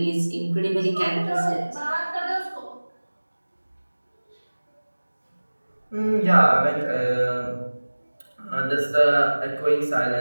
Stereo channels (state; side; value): inverted; both; correlation -1.00